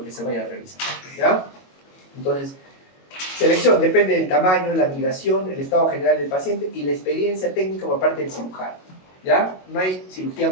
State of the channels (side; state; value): right; late; 22 ms